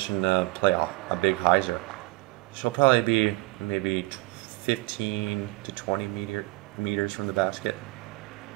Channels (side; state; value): left; quieter; 21.5 dB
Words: to play a big hyzer. She'll probably be maybe 15 to 20 meters from the basket.